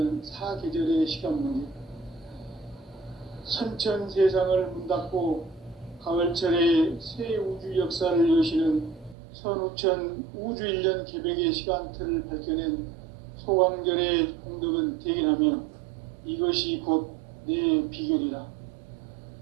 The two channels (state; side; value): drops out; left; at 9.2 s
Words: 사계절의 시간문이다. 선천 세상을 문닫고 가을철에 새 우주 역사를 여시는 선우천 우주 1년 개벽의 시간틀을 밝혀낸 소강절의 공덕은 대견하며 이것이 곧 내 비결이다.